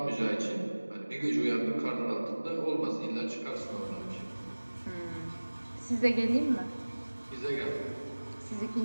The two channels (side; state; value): both; inverted; correlation -1.00